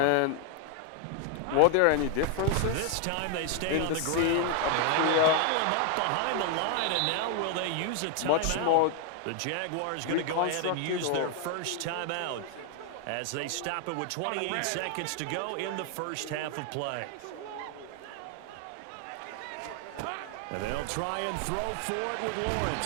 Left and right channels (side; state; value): both; different; correlation 0.00